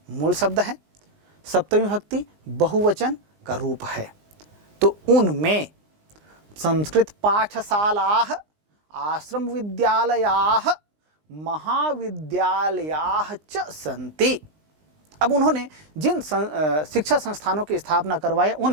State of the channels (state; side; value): late; left; 20 ms